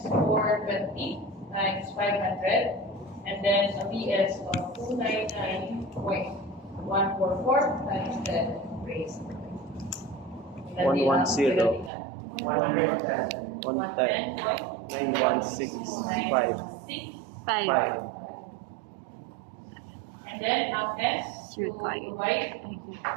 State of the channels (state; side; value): drops out; left; at 11.9 s